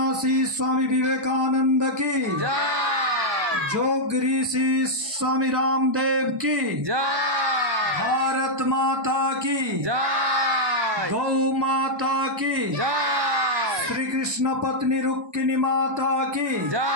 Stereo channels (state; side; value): late; left; 1.1 ms